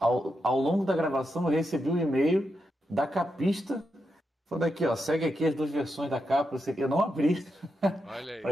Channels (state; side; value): normal; both; correlation 0.85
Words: longo da gravação eu recebi um e-mail da capista Falando aqui, ó, segue aqui as 2 versões da capa, eu não abri Olha aí.